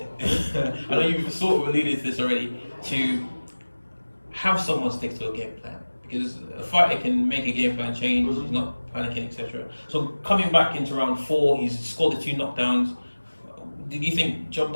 I know you've sort of alluded to this already, to have someone stick to a game plan, because a fighter can make a game plan change, he's not panicking, etc. So coming back into round 4, he's scored the 2 knockdowns. Did you think job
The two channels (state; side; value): inverted; both; correlation -1.00